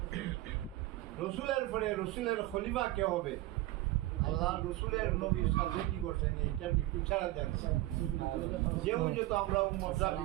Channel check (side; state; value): left; quieter; 17.3 dB